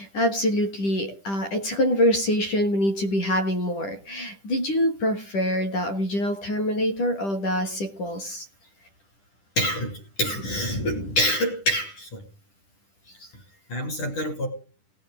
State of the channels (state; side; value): late; right; 10 ms